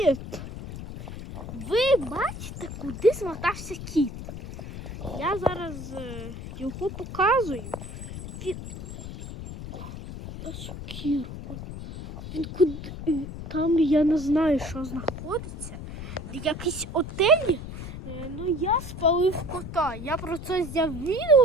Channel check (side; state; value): left; noise; rumble, 10 dB below the sound